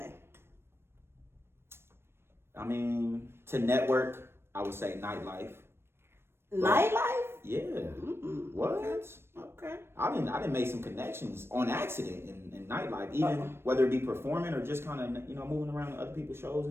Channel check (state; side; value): late; left; 0.12 ms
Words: I mean, to network, I would say nightlife. Nightlife? Yeah. Mm-mm. What? Okay. I didn't make some connections on accident in nightlife, even whether it be performing or just kind of moving around to other people's shows